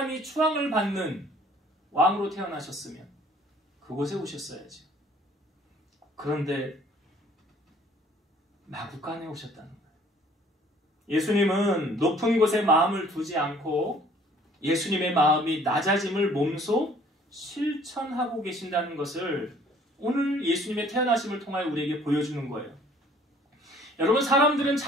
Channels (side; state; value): both; normal; correlation 0.56